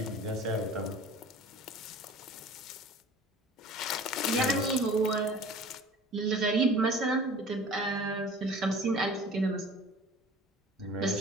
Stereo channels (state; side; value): normal; both; correlation 0.44